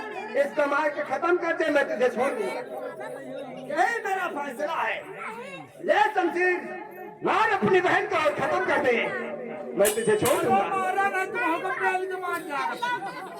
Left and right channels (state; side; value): identical; both; correlation 1.00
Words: इसको मार के खत्म कर दे, मैं तुझे छोड़ दूंगा। यही मेरा फैसला है। ले शमशीर, मार अपनी बहन को और खत्म कर दे, मैं तुझे छोड़ दूंगा।